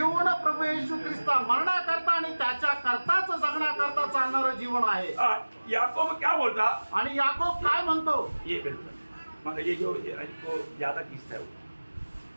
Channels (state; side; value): inverted; both; correlation -1.00